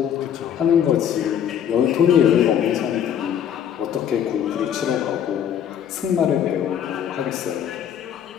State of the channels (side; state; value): right; quieter; 9.1 dB